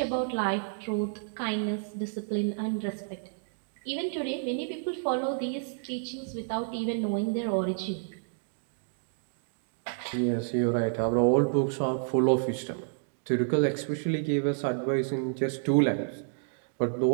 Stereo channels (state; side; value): silent; left; digital silence